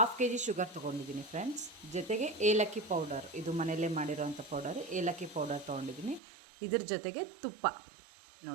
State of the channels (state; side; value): drops out; left; at 6.2 s